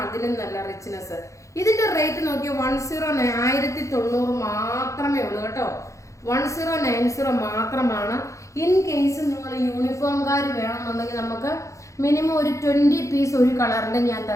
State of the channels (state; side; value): late; right; 0.15 ms